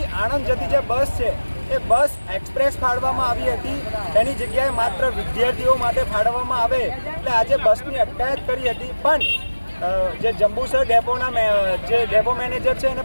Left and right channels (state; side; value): inverted; both; correlation -1.00